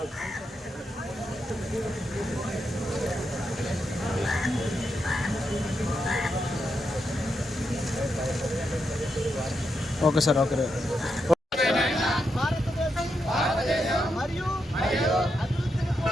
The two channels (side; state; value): both; normal; correlation 0.84